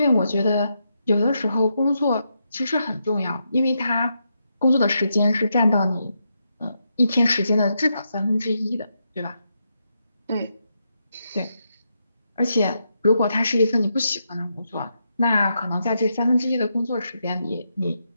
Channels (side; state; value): both; inverted; correlation -0.82